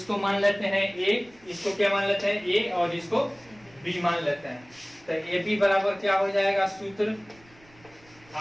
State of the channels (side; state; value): right; noise; rumble, 28 dB below the sound